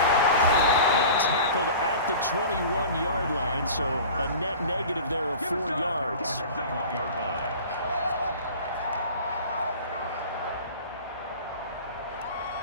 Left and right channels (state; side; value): inverted; both; correlation -0.39